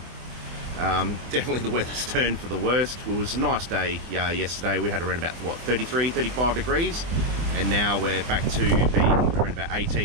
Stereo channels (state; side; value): late; left; 24 ms